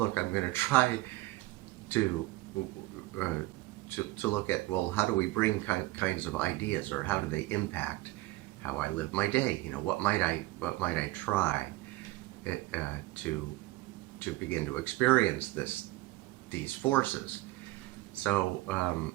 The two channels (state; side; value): quieter; left; 19.0 dB